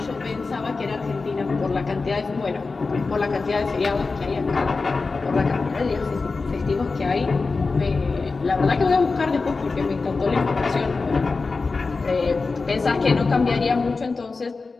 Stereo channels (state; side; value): quieter; right; 4.1 dB